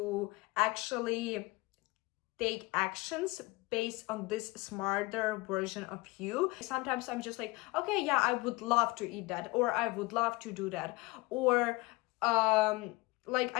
actually take actions based on this smarter version of you. Sometimes I'm just like, okay, yeah, I would love to eat that, or I would love to do that, or like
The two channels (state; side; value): quieter; right; 22.0 dB